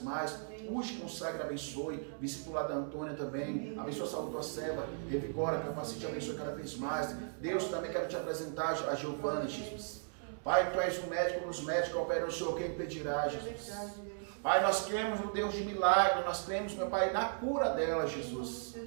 mais. Use, consagra, abençoe. Visita o lar da Antônia também. Abençoe a saúde da tua serva. Revigora, capacite, abençoe cada vez mais. Deus, também quero te apresentar a Giovana, Jesus. Pai, tu és o médico dos médicos, opera o Senhor, quem impedirá, Jesus. Pai, nós cremos no Deus de milagre, nós cremos, meu Pai, na cura dela, Jesus.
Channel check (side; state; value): left; silent; 53 dB below the other